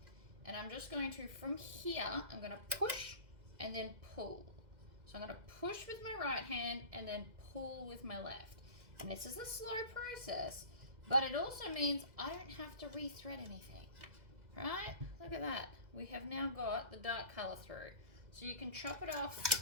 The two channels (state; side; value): late; left; 2.0 ms